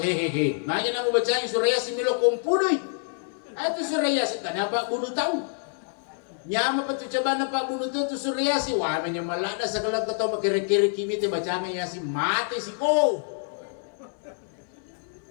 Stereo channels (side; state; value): right; silent; 60 dB below the other